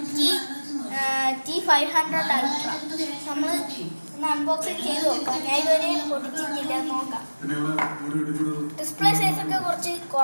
T500 Ultra. നമ്മൾ ഒന്ന് അൺബോക്സിംഗ് ചെയ്ത് നോക്കാം. ഞാൻ ഇതുവരെ പൊട്ടിച്ചിട്ടില്ല, നോക്കാം. ഡിസ്പ്ലേ സൈസൊക്കെ കുറച്ച്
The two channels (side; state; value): both; inverted; correlation -1.00